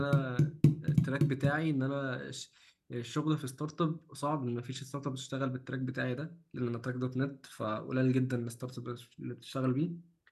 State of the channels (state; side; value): identical; both; correlation 1.00